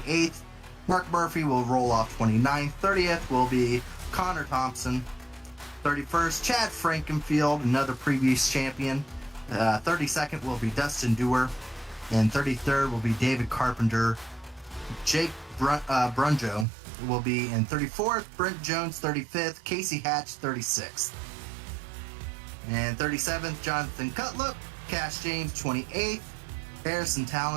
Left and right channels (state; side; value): drops out; left; at 16.7 s